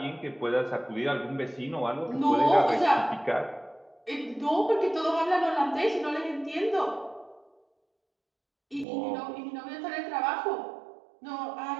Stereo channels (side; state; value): left; drops out; at 8.8 s